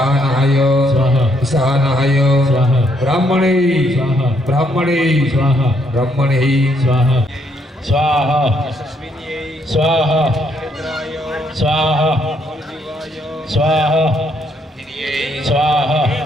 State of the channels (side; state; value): both; normal; correlation 0.72